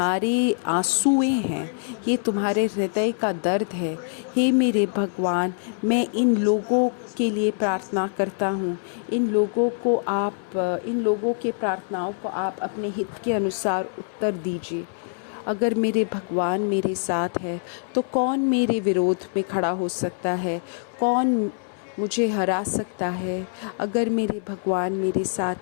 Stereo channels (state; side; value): silent; right; 62 dB below the other